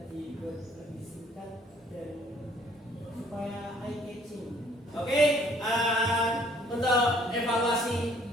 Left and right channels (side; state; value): both; normal; correlation 0.60